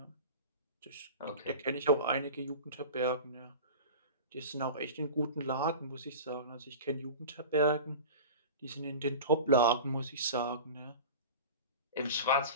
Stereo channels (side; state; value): both; inverted; correlation -0.33